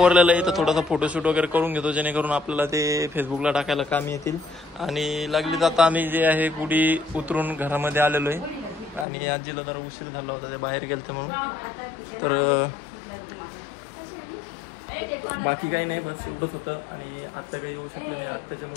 आहे तर थोडासा फोटोशूट वगैरे करून घेतो जेणेकरून आपल्याला ते फेसबुकला टाकायला काम येतील. आणि लागली जाता आम्ही जे आहे गुढी उतरून घरामध्ये आलेलो आहे आणि आजीला जरा उशीर झाला होता ते बाहेर गेलते म्हणून. तर बाकी काही नाही बस एवढंच होतं. आणि आत्या काही येऊ शकले नाही आत्याच्या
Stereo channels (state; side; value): drops out; right; at 9.1 s